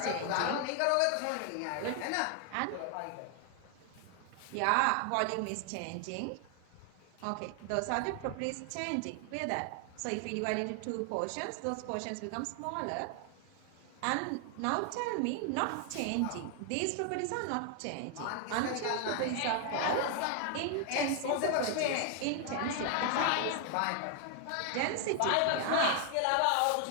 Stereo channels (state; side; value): different; both; correlation 0.00